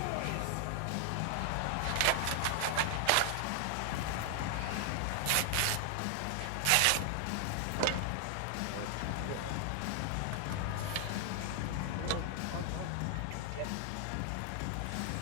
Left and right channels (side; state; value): both; different; correlation 0.00